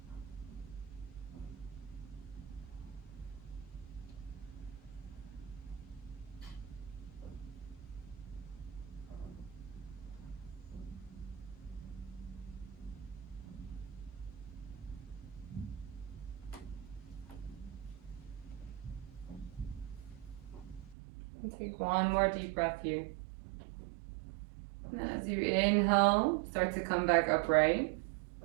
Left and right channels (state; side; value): drops out; left; at 21.0 s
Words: Take one more deep breath here. And then as you inhale, start to come back upright.